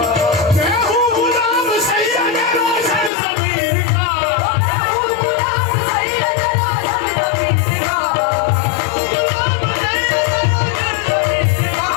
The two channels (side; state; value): right; drops out; at 3.1 s